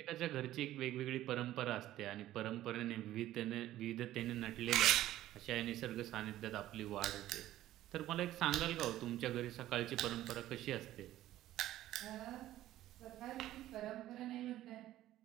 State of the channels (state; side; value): quieter; left; 14.1 dB